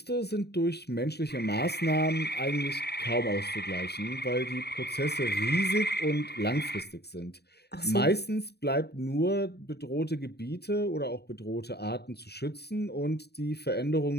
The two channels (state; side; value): late; right; 0.48 ms